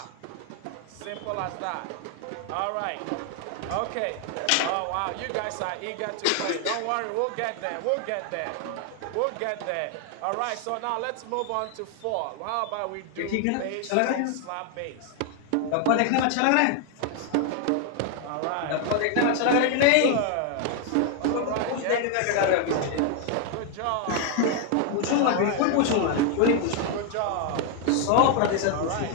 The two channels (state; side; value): different; both; correlation 0.01